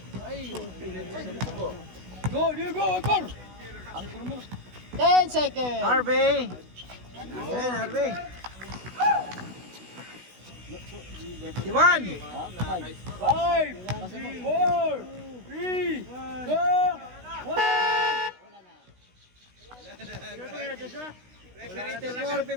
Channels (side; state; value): left; late; 16 ms